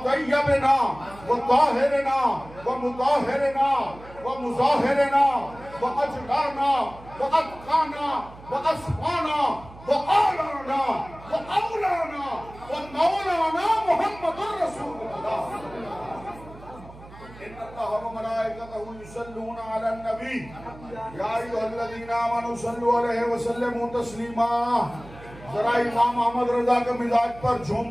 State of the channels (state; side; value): noise; right; hum, 19 dB below the sound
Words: व ताहिरना व मुताहिरना व मुज़ाहिरना व अजलाना व अत्काना व अस्फाना व आलाना व औलाना व मौलाना मुहम्मदुर रसूलुल्लाह। इन्नल्लाह व मलाइकतहु युसल्लूना अलन नबी या अय्युहल्लज़ीना आमनू सल्लु अलैहि व सल्लिमू तस्लीमा। जरा इमाम अहमद रजा के मिजाज पर झूम